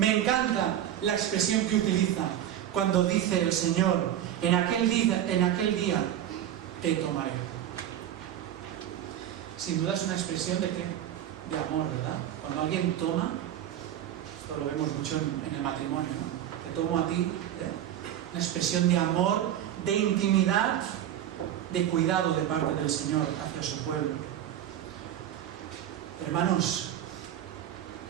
Me encanta la expresión que utiliza cuando dice el Señor, en aquel día te tomaré. Sin duda es una expresión de ¿qué? De amor, ¿verdad? Cuando alguien toma, esto lo vemos mucho en el matrimonio, ¿no? Te tomo a ti, una expresión de amor, de intimidad, de cuidado de parte del Señor hacia su pueblo. Hermanos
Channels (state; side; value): quieter; left; 11.2 dB